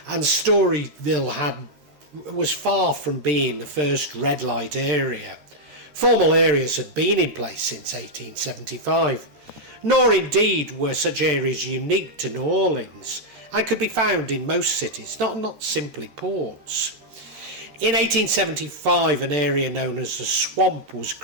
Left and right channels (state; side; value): late; left; 13 ms